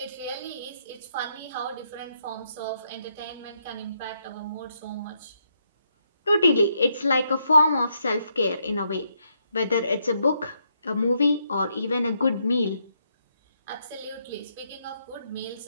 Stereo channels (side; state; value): both; inverted; correlation -0.77